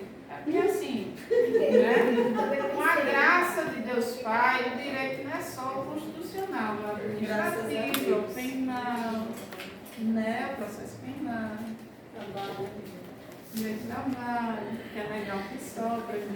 É porque assim, né? Com a graça de Deus Pai, o direito não é só o constitucional, o administrativo, o penal, né? O processo penal, Trabalho. Meu trabalho, que é legal que sobra,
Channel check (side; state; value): both; identical; correlation 1.00